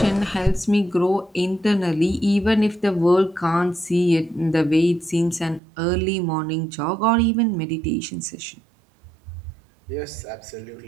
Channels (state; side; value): drops out; left; at 5.6 s